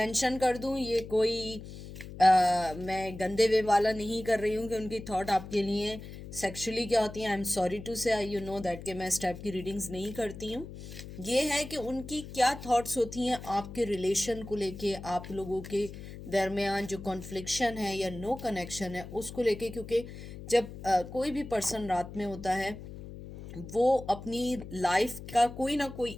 कर दूँ, ये कोई मैं गंदे वे वाला नहीं कर रही हूँ कि उनकी थॉट आपके लिए सेक्सुअली क्या होती हैं। आई एम सॉरी टू से, यू नो दैट कि मैं इस टाइप की रीडिंग्स नहीं करती हूँ। ये है कि उनकी क्या थॉट्स होती हैं आपके रिलेशन को लेके, आप लोगों के दरमियान जो कॉन्फ्लिक्शन है या नो कनेक्शन है उसको लेके। क्योंकि जब कोई भी पर्सन रात में होता है, वो अपनी लाइफ का कोई ना कोई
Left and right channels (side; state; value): left; noise; hum, 12 dB below the sound